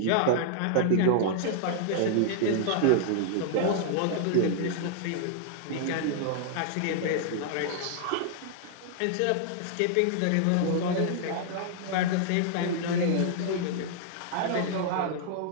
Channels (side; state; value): both; different; correlation -0.01